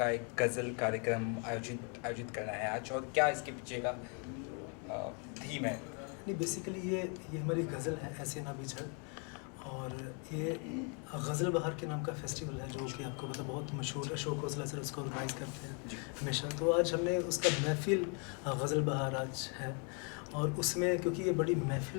एक गज़ल कार्यक्रम आयोजित आयोजित करना है आज, और क्या इसके पीछे का थीम है? नहीं, बेसिकली ये हमारी गज़ल है, ऐसे ना बिछड़। और ये गज़ल बहार के नाम का फेस्टिवल है, जो कि आपको पता बहुत मशहूर है। अशोक खोसला सर उसको ऑर्गेनाइज़ करते हैं हमेशा। तो आज हमने उसका महफ़िल गज़ल बहार आज है, और उसमें क्योंकि ये बड़ी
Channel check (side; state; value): right; quieter; 37.7 dB